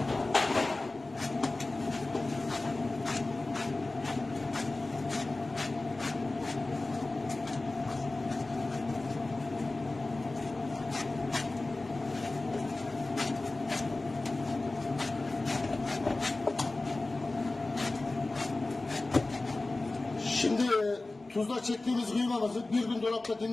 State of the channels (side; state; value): right; quieter; 3.1 dB